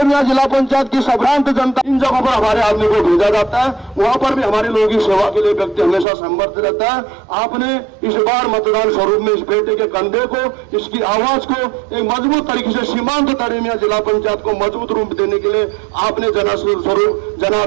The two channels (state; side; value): drops out; left; at 6.1 s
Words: जिला पंचायत की संभ्रांत जनता, इन जगहों पर हमारे आदमी को भेजा जाता है, वहां पर भी हमारे लोगों की सेवा के लिए व्यक्ति हमेशा समर्थ रहता है। आपने इस बार मतदान स्वरूप में इस बेटे के कंधे को, इसकी आवाज को एक मजबूत तरीके से सीमांत तड़ेनिया जिला पंचायत को मजबूत रूप देने के लिए आपने स्वरूप